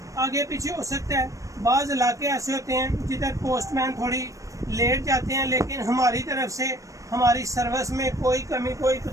आगे पीछे हो सकता है। बाज़ इलाके ऐसे होते हैं जिधर पोस्टमैन थोड़ी लेट जाते हैं, लेकिन हमारी तरफ से हमारी सर्विस में कोई कमी, कोई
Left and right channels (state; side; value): late; left; 0.16 ms